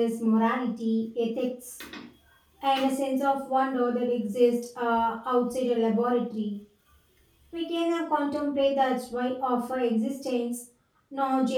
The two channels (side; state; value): both; identical; correlation 1.00